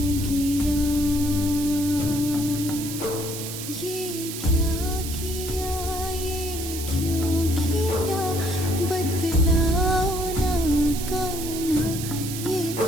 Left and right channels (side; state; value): right; noise; hiss, 8 dB below the sound